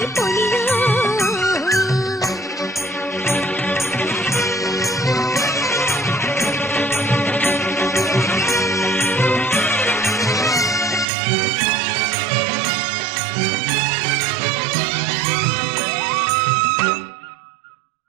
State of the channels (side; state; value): left; drops out; at 11.1 s